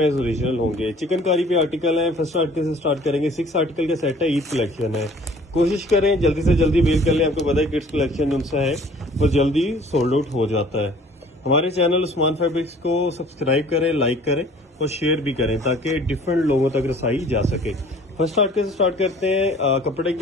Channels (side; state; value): both; normal; correlation 0.52